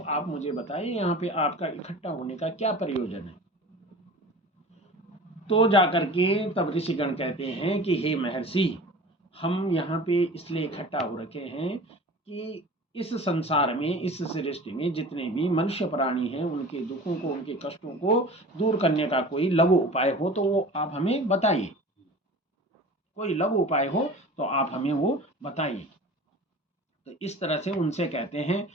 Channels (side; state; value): both; normal; correlation 0.39